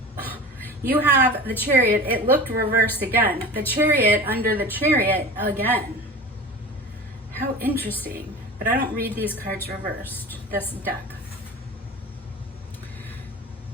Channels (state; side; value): normal; both; correlation 0.34